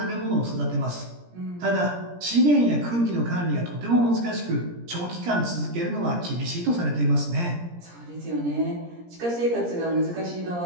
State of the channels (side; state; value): left; late; 17 ms